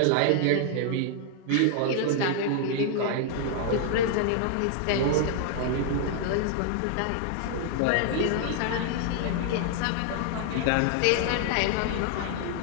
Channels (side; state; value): both; different; correlation 0.00